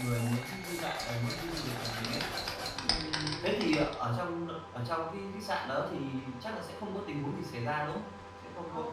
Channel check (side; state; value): both; identical; correlation 1.00